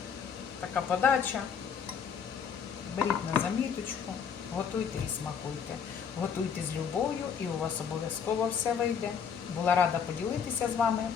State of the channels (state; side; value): quieter; right; 6.9 dB